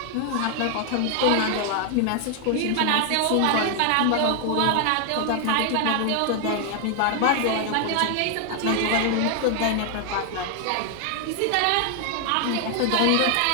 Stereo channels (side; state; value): both; different; correlation 0.00